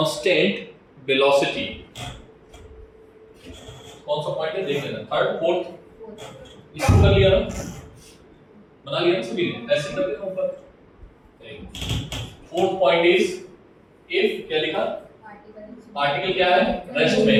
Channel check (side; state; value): both; identical; correlation 1.00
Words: velocity, कौन सा पॉइंट है देख लेना, थर्ड फोर्थ, इसको कर लिया ना, बना लिया ना सभी ने, ऐसे कर देना ऊपर। फोर्थ पॉइंट इज, इफ क्या लिखा? पार्टिकल क्या है, रेस्ट में